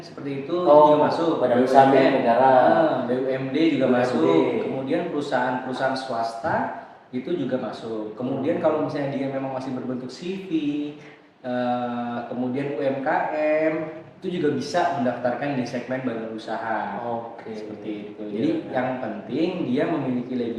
seperti itu juga masuk. Badan usaha milik negara. BUMD juga masuk. Kemudian perusahaan-perusahaan swasta itu juga masuk. Kemudian kalau misalnya dia memang masih berbentuk CV, kemudian UMKM, itu juga bisa mendaftarkan di segmen badan usaha. Seperti itu. Jadi yang penting dia memiliki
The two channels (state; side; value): identical; both; correlation 1.00